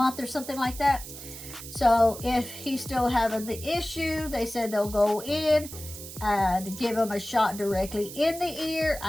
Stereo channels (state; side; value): noise; right; hiss, 12 dB below the sound